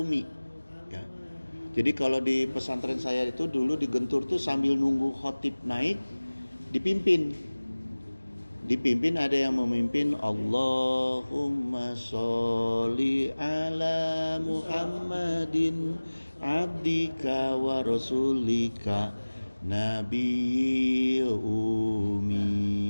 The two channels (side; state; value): both; inverted; correlation -1.00